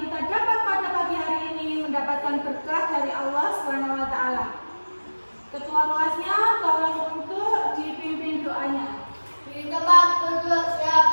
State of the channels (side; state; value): both; inverted; correlation -1.00